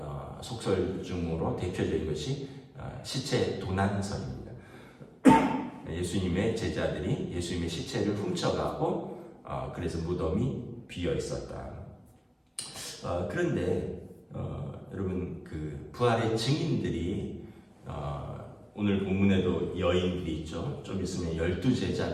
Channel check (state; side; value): identical; both; correlation 1.00